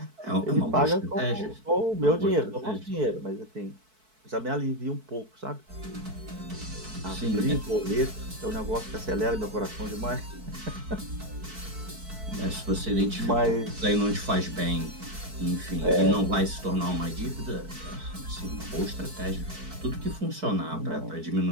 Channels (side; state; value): left; late; 4.6 ms